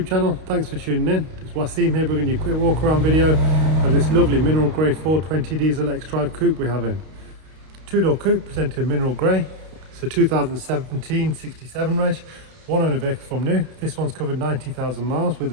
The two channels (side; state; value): left; late; 32 ms